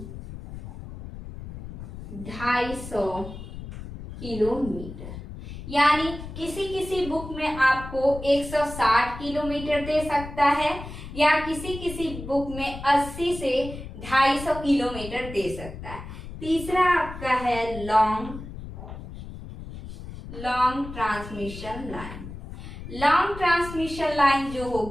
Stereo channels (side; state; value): left; noise; rumble, 11 dB below the sound